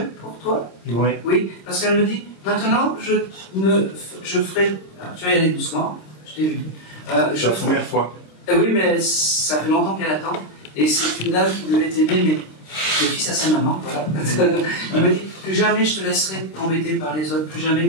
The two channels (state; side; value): late; right; 26 ms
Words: pour toi? Oui. Oui, parce qu'elle me dit, maintenant je ferai, tu vas y aller doucement, je t'ai vu. C'est la première fois. Oui, mais ça fait longtemps qu'elle attend. Et c'est une dame qui devait t'aimer, mais le fils à sa maman, voilà. Elle me dit, plus jamais je te laisserai t'embêter par les autres, plus